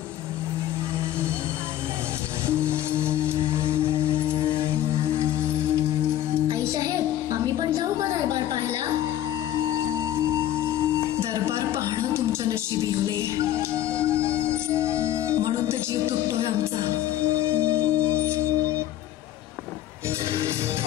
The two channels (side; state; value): right; quieter; 12.6 dB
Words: आई साहेब, आम्ही पण जाऊ का दरबार पाहायला? दरबार पाहणं तुमच्या नशिबी होले, म्हणून तर जीव तुटतोय आमचा.